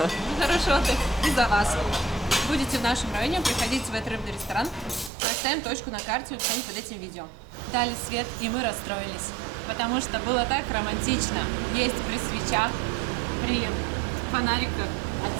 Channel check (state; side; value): drops out; left; at 5.1 s